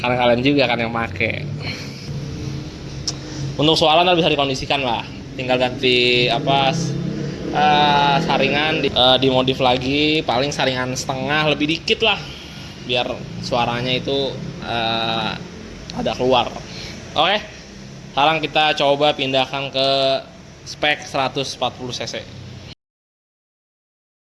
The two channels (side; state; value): both; identical; correlation 1.00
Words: kalian juga kan yang make. Untuk suara ntar bisa dikondisikan lah, tinggal ganti apa saringan dimodif lagi, paling saringan setengah lebih dikit lah biar suaranya itu ada keluar. Oke, sekarang kita coba pindahkan ke spek 140 cc.